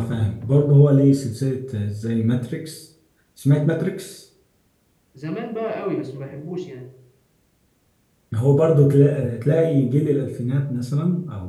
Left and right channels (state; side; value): identical; both; correlation 1.00